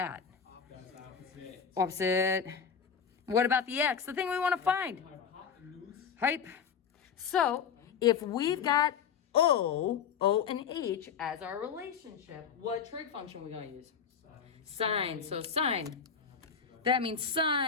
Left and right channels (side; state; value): right; quieter; 6.9 dB